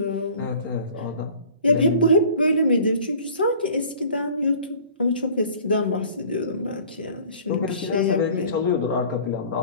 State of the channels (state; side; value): inverted; both; correlation -0.47